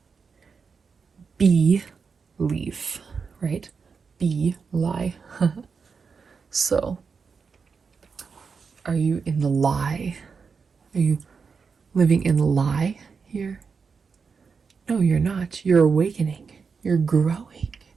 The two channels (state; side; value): quieter; left; 5.4 dB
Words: Belief, right? Be lie. So, are you in the lie? Are you living in the lie here? No, you're not. You're awakening. You're growing.